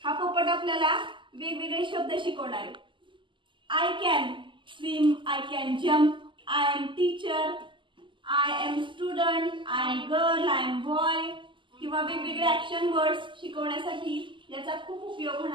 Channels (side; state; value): left; late; 0.24 ms